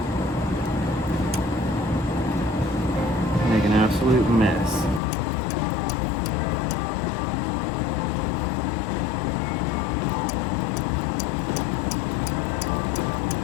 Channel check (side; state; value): right; drops out; at 5.0 s